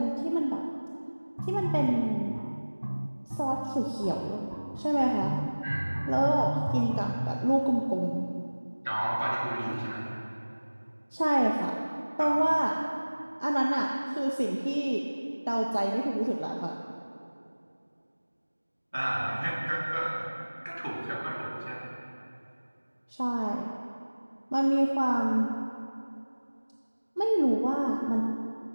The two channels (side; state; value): both; inverted; correlation -1.00